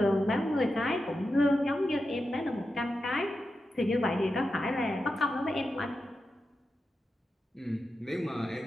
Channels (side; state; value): both; normal; correlation 0.90